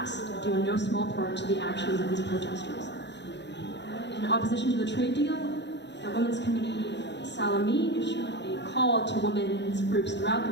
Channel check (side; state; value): right; late; 0.51 ms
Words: due in no small part to the actions of these protesters. In opposition to the trade deal, the Women's Committee Salami issued a call to women's groups throughout the